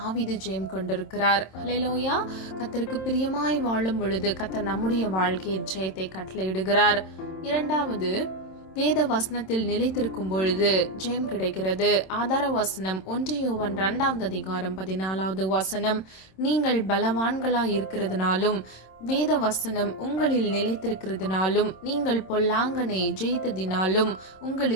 ஜெயம் கொண்டிருக்கிறார். ஹல்லேலூயா. கர்த்தருக்கு பிரியமாய் வாழும் பொழுது கர்த்தர் நம்முடைய வாழ்க்கையில் ஜெயத்தை கட்டளையிடுகிறார். இரண்டாவது, வேத வசனத்தில் நிலைத்திருக்கும் பொழுது ஜெயம் கிடைக்கிறது. ஆதார வசனம் 1 யோவான் 2வது அதிகாரம் 14வது வசனம். நீங்கள் பலவான்களாய் இருக்கிறதுனாலும் வேத வசனம் உங்களில் நிலைத்திருக்கிறதுனாலும் நீங்கள் பொல்லாங்கனை ஜெயித்ததினாலும்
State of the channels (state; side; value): late; right; 27 ms